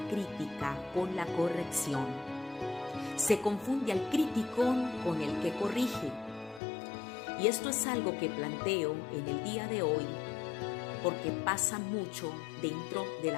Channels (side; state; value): right; drops out; at 6.6 s